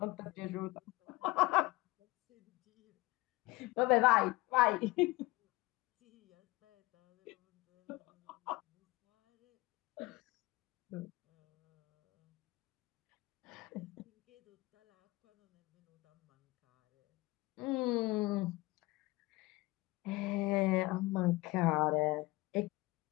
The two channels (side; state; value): right; quieter; 21.3 dB